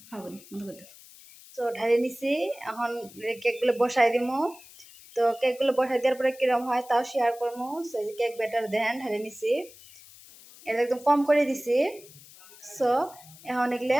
হবে তো ঢালি নিছি। এখন কেকগুলো বসাই দিমু। তো কেকগুলো বসাই দেওয়ার পরে কিরম হয় তাও শেয়ার করবো। সো এই যে কেক ব্যাটার দেন ঢালি নিছি, এটা একদম কম করে দিছি। সো এখন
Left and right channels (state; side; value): noise; left; hiss, 21 dB below the sound